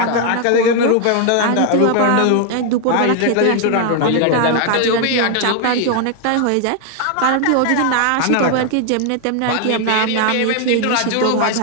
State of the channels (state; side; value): different; both; correlation 0.00